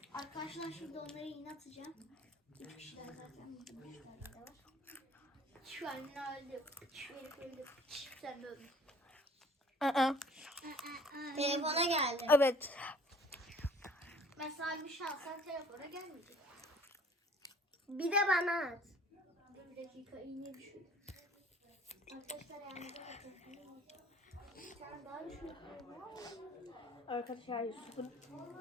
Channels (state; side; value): normal; both; correlation 0.53